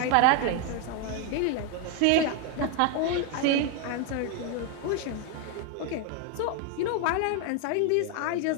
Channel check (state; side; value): different; both; correlation 0.01